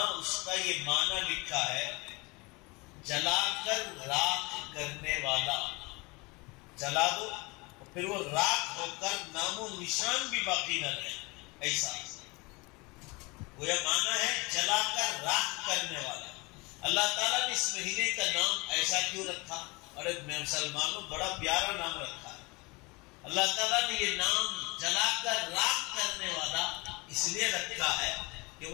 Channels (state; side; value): quieter; right; 26.1 dB